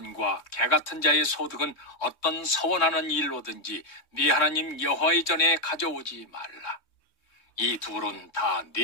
개 같은 자의 소득은 어떤 서원하는 일로든지 네 하나님 여호와의 전에 가져오지 말라. 이 둘은 다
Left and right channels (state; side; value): late; right; 3.2 ms